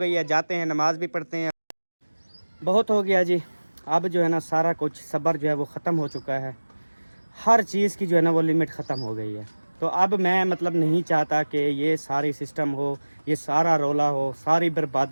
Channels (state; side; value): inverted; both; correlation -1.00